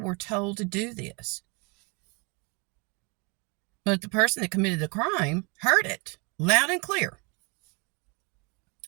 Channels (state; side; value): quieter; left; 30.3 dB